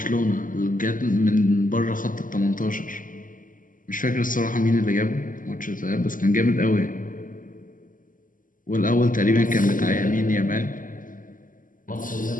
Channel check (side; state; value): right; late; 0.39 ms